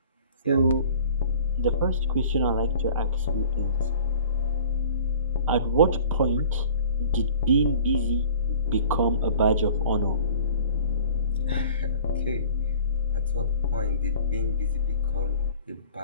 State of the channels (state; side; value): inverted; both; correlation -0.47